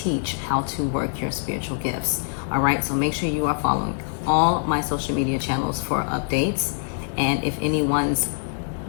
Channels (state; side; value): silent; right; digital silence